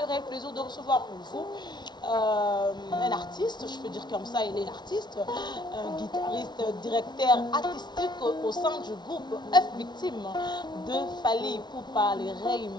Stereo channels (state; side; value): late; right; 0.20 ms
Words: réel plaisir de recevoir pour vous un artiste, je peux dire comme ça, il est l'artiste, un guitariste, directeur artistique au sein du groupe F Victime de Fally Ipupa, le Rey